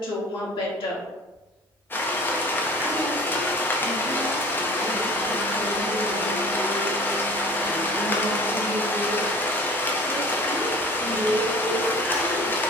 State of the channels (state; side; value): normal; both; correlation 0.44